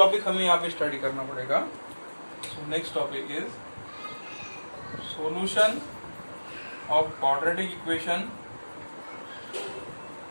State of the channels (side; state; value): both; inverted; correlation -1.00